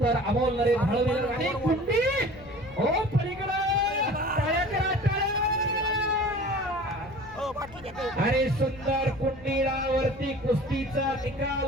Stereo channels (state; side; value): noise; left; rumble, 21 dB below the sound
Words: तर अमोल नरेश हळवीकर आणि कुंडी हो पलीकडे टाळ्या करा, टाळ्या. आणि सुंदर कुंडीडावरती कुस्तीचा